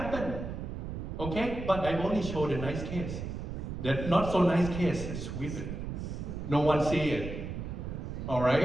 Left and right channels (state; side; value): noise; right; rumble, 6 dB below the sound